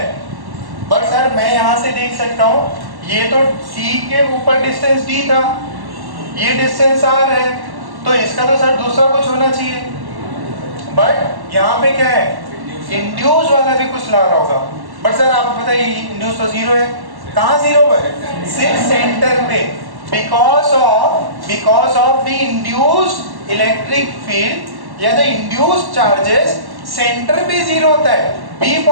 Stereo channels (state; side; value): late; left; 1.1 ms